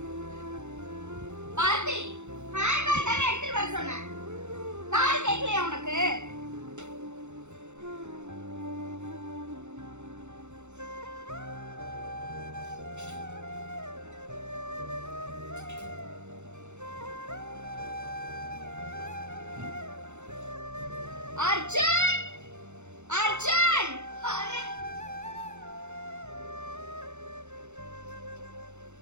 பாட்டி, ஹேண்ட்பேக் தானே எடுத்துட்டு வர சொன்னேன். காது கேட்கலையா உனக்கு? அர்ஜுன், அர்ஜுன்,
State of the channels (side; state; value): left; late; 0.83 ms